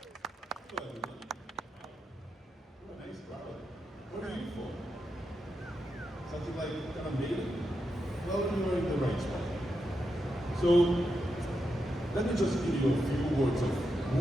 Nice crowd. What are you for? Something like kind of Maney? Well, you're in the right spot. So, let me just give you a few words of who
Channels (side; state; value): both; normal; correlation 0.86